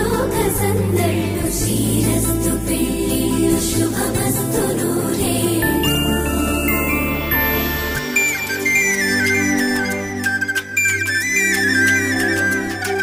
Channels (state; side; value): identical; both; correlation 1.00